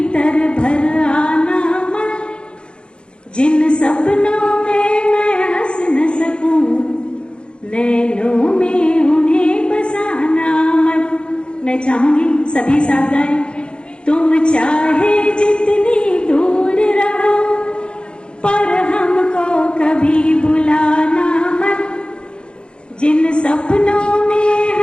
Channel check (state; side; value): late; right; 0.054 ms